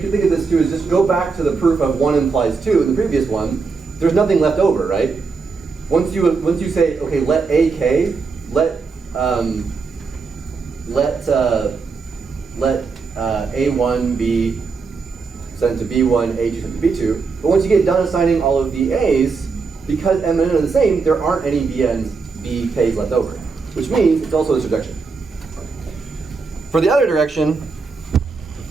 can think of this too is just go back to the proof of 1 implies 2 in the previous one. There's nothing left over, right? Once you say, okay, let AK, let A1 be sent to B1, A2 sent to B2. But once you get done assigning all of the A's, because M and N are the same, there aren't any BKs left over, which means it's also a surjection. For the other direction,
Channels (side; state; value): left; quieter; 4.7 dB